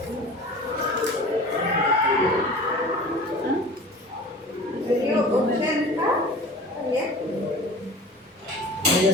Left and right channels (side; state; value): both; normal; correlation 0.40